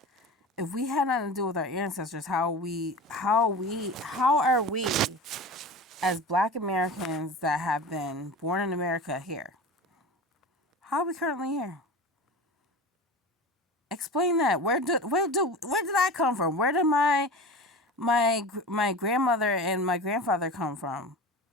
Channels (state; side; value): normal; both; correlation 0.31